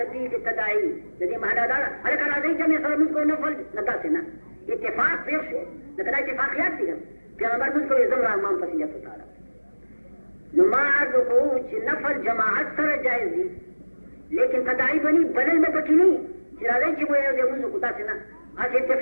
التداعی جدی مہدا دارا ارے کرا دی جمع سر مجھ کو نفل نتا سے نا اتفاق پیش ہو لیکن اتفاقیات تھی پیغمبر مجھ کو ازم رحمان پسندیت اتارا نماز کو نفل جماعت سرا جائز دی لیکن تداعی بنی بدل میں بکی نہیں چرا دی وہ دے مجھ کو تا سے نا آج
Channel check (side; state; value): both; inverted; correlation -1.00